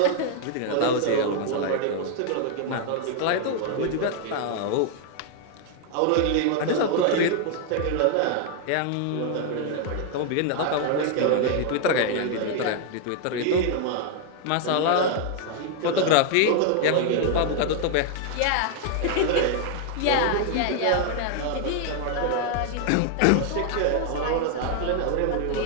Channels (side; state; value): both; different; correlation 0.00